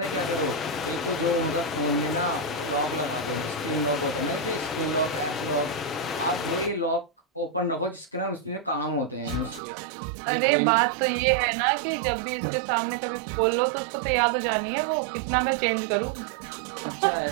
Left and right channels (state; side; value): drops out; left; at 9.6 s